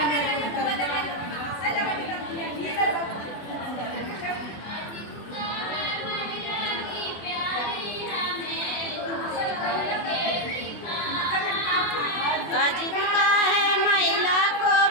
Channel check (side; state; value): right; late; 24 ms